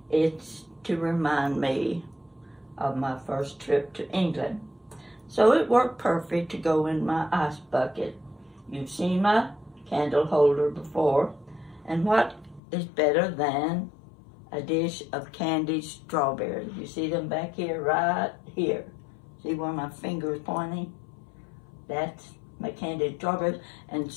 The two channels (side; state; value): right; drops out; at 12.6 s